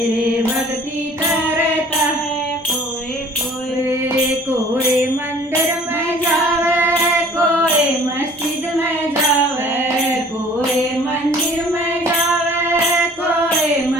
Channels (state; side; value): normal; both; correlation 0.51